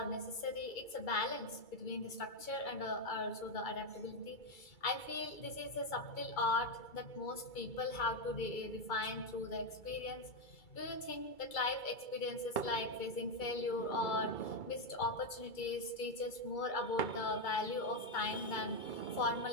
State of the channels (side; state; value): right; late; 2.3 ms